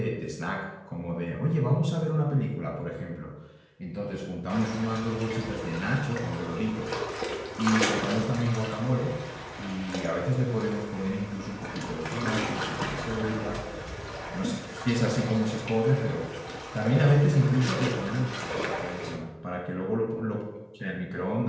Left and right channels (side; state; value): both; identical; correlation 1.00